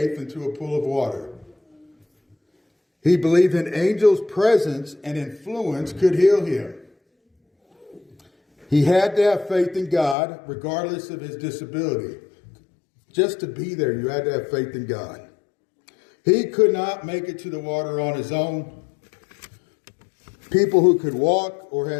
into a pool of water. He believed an angel's presence and influence could heal him. He had to have faith in God, regardless of his disability. Just to be there, you had to have faith in God. He could not make it to the water on his own. People who could walk or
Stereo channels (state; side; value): drops out; right; at 10.2 s